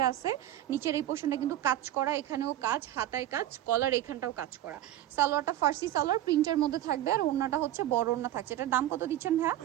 আছে, নিচের এই পোর্শনটা কিন্তু কাজ করা, এখানেও কাজ, হাতায় কাজ, কলার এখানটাও কাজ করা। সালোয়ারটা ফার্সি সালোয়ার প্রিন্টের মধ্যে থাকবে, আর ওড়নাটা হচ্ছে বড় ওড়না থাকছে। এটার দাম কত দিচ্ছেন ভাইয়া?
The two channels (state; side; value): quieter; left; 13.2 dB